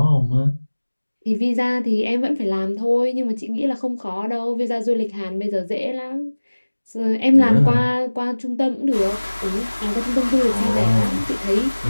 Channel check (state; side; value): inverted; both; correlation -1.00